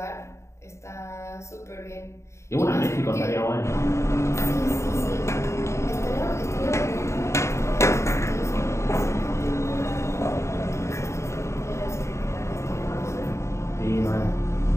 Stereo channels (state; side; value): late; right; 0.14 ms